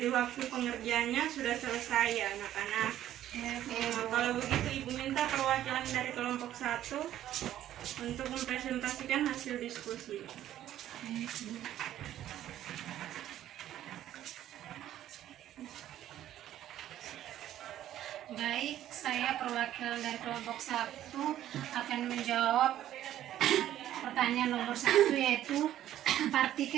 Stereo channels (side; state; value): left; quieter; 12.3 dB